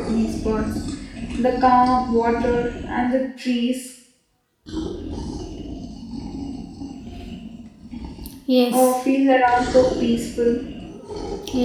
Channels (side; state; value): both; identical; correlation 1.00